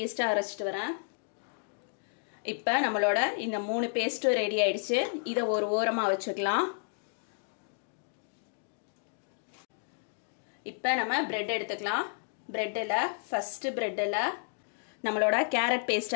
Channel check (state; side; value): silent; right; digital silence